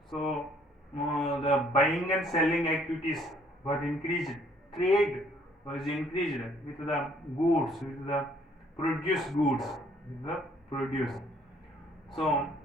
So the buying and selling activities were increased. Trade was increased with the goods, with the produced goods, with the produce. So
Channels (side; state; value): both; normal; correlation 0.62